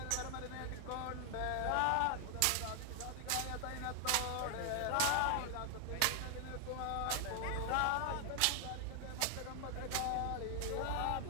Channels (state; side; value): different; both; correlation 0.00